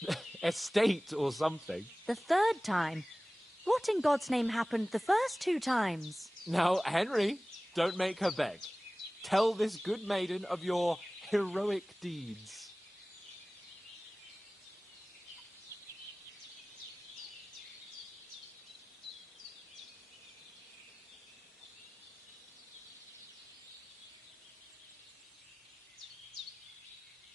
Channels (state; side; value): normal; both; correlation 0.98